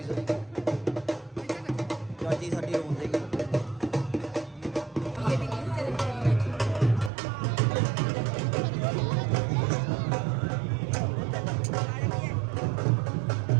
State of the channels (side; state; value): left; drops out; at 7.1 s